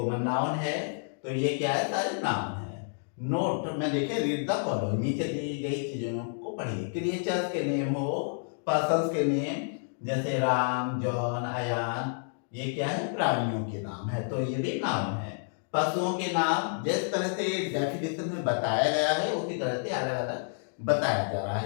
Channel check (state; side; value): silent; right; digital silence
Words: नाउन है। तो ये क्या है, सारे नाउन है। नोट में देखिए, रीड द फॉलोइंग, नीचे दी गई चीजों को पढ़िए। क्रिएचर्स के नेम हो, पर्सन्स के नेम जैसे राम, जॉन, अयान, ये क्या है, प्राणियों के नाम है, तो ये भी नाम है। पशुओं के नाम जिस तरह से डेफिनेशन में बताया गया है उसी तरह से अलग अलग बताया जा रहा